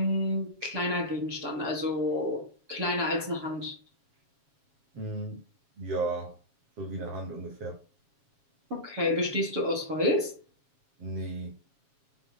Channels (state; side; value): late; left; 7.3 ms